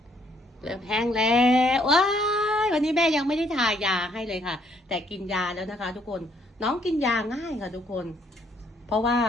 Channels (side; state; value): both; normal; correlation 0.67